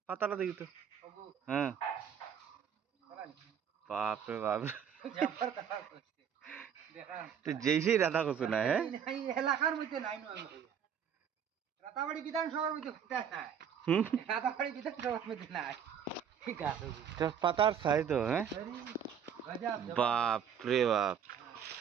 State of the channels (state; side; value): quieter; left; 8.1 dB